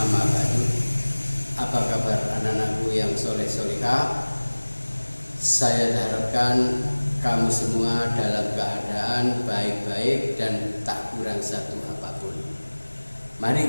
ba'du. Apa kabar anak-anakku yang soleh-solihah? Saya harapkan kamu semua dalam keadaan baik-baik dan tak kurang satu apapun.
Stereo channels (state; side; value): inverted; both; correlation -1.00